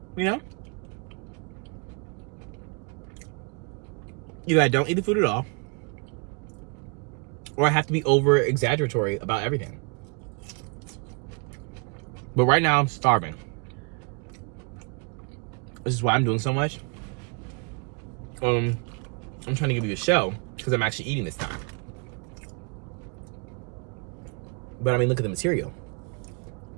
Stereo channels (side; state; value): left; quieter; 34.2 dB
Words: you know? Either I don't eat the food at all, or I have to be over exaggeratory about everything. But right now I'm starving. This is why I'm doing so much. I'm trying to give you a show because I'm actually eating this time. But I mean, look at the material.